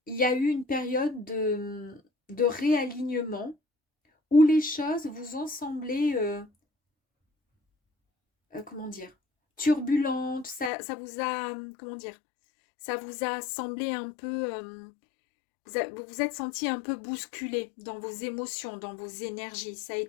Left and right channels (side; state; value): right; drops out; at 10.7 s